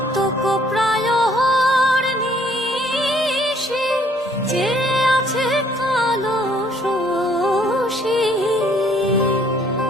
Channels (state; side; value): normal; both; correlation 0.62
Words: প্রায় নিশি চেয়ে আছে কালো শশী।